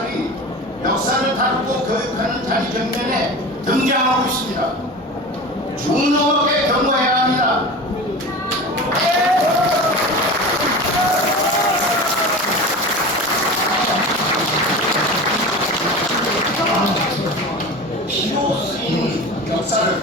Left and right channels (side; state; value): both; normal; correlation 0.32